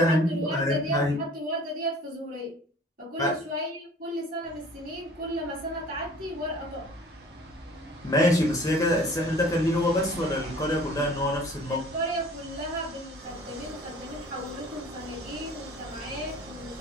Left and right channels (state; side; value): normal; both; correlation 0.48